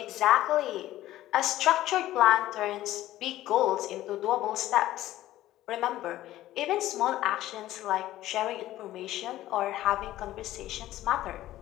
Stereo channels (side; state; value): right; quieter; 14.7 dB